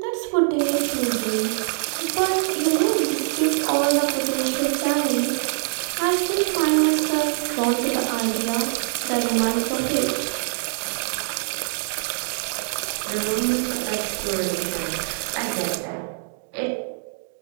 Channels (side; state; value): left; silent; digital silence